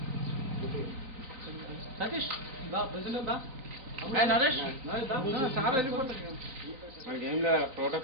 సతీష్ దా ప్రెసిడెంట్ దా ఏ నరేష్ దా సార్ వెళ్ళిపోతారు మనకి ఏం లేదు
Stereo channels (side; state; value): left; late; 3.9 ms